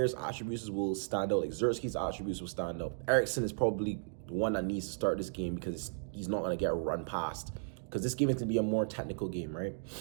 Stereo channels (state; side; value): silent; left; digital silence